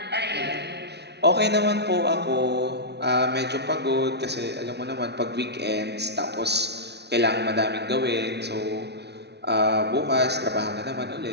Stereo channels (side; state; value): left; late; 0.49 ms